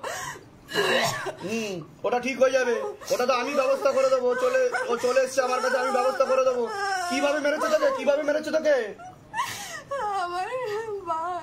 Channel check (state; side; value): identical; both; correlation 1.00